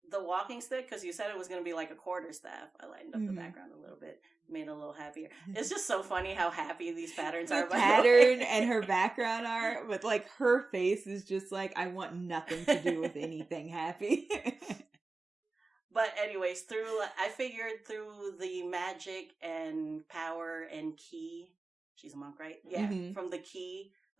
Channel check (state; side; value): quieter; left; 3.5 dB